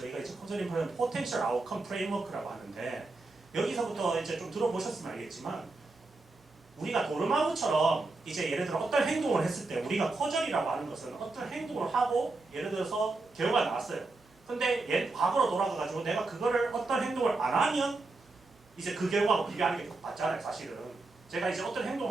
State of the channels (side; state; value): left; quieter; 3.4 dB